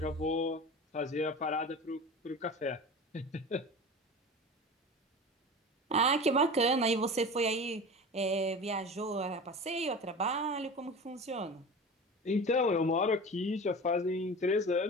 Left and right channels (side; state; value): both; normal; correlation 0.33